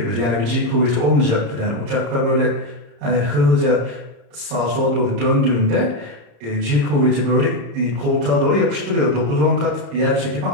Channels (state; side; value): late; left; 34 ms